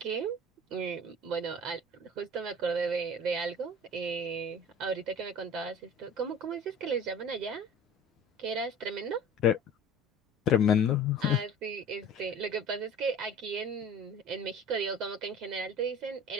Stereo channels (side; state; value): both; normal; correlation 0.41